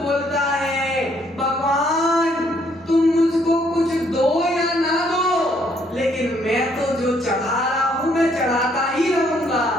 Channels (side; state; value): both; normal; correlation 0.68